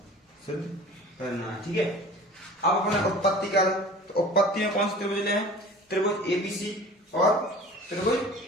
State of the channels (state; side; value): normal; both; correlation 0.42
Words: सिद्ध करना है। ठीक है। अब अपने उत्पत्ति कर, तो उत्पत्ति में कौन से त्रिभुज ले हैं? त्रिभुज ए बी सी और त्रिभुज